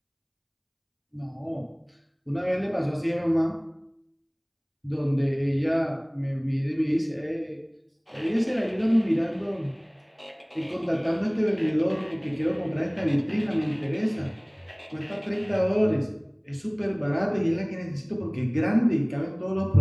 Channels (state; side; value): identical; both; correlation 1.00